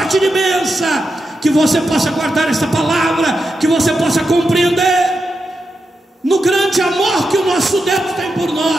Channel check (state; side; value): normal; both; correlation 0.87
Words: de bênção, que você possa guardar esta palavra, que você possa compreender no grande amor que o nosso Deus tem por